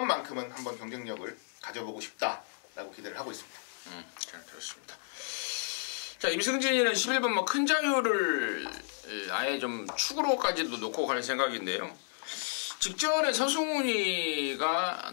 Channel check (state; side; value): silent; right; digital silence